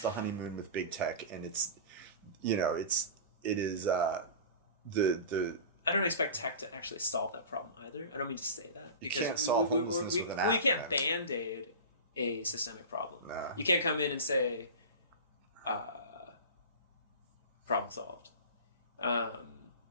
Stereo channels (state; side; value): inverted; both; correlation -0.31